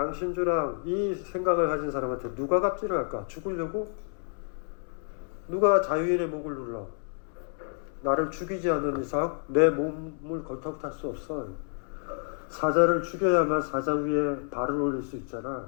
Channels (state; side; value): silent; right; 56 dB below the other